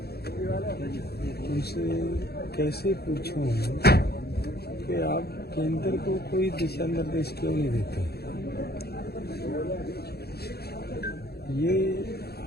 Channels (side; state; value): right; late; 0.46 ms